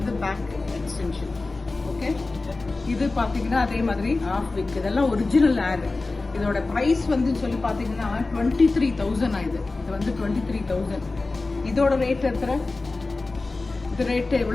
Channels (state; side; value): quieter; right; 3.4 dB